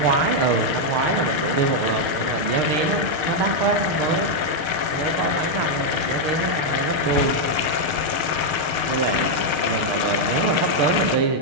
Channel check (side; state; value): left; late; 6.5 ms